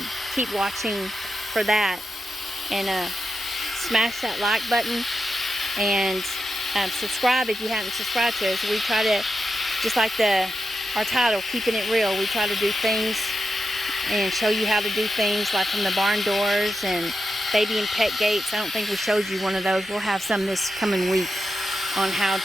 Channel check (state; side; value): normal; both; correlation 0.88